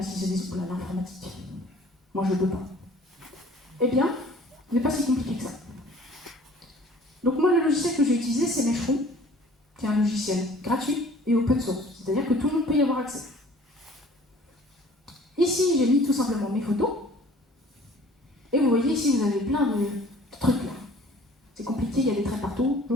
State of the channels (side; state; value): both; normal; correlation 0.51